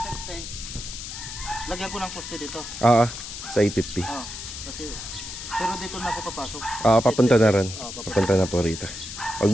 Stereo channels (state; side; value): noise; left; hiss, 9 dB below the sound